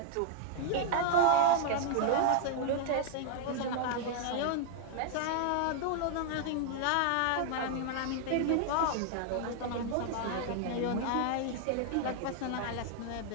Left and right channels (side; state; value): both; different; correlation 0.00